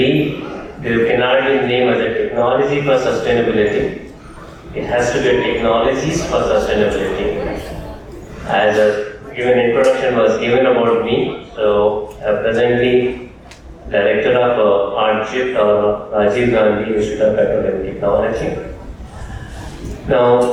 there cannot be named as a technology for sustainability. It has to be a technologies for sustainability. As a given introduction was given about me, so I'm presently Director of RGIPT or Rajiv Gandhi Institute of Petroleum Technology.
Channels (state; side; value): identical; both; correlation 1.00